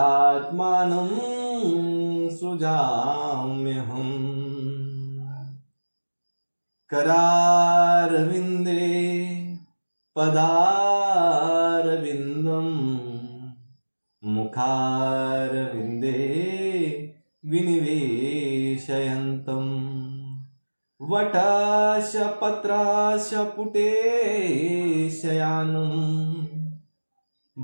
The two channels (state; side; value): inverted; both; correlation -1.00